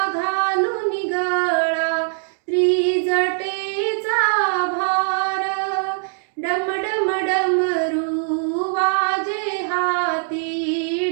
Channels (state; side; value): silent; left; digital silence